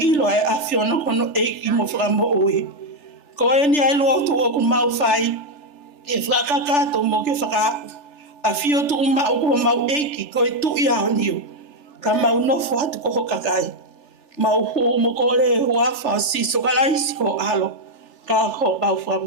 e afiona kono eiki mo whakamoui. Ko e ni ai Lotu o ku mau whai. E whakakato mo ke whakaapu. A fio tu uma o ko mau eiki ko e tu ia o niu. Ka mau nofo hatu ko hokakai. Mau hu mo ko le huafa si so kalaisi ko alo. Ka ho mau wha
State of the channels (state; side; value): late; right; 3.4 ms